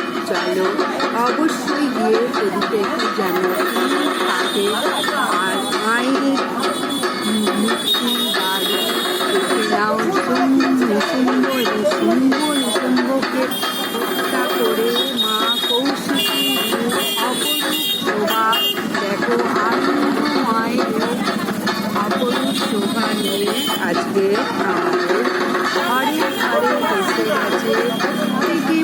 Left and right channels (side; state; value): both; identical; correlation 1.00